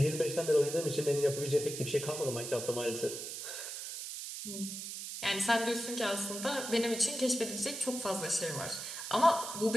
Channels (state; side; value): noise; right; hiss, 7 dB below the sound